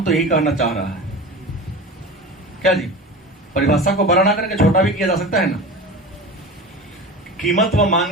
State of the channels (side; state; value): both; normal; correlation 0.31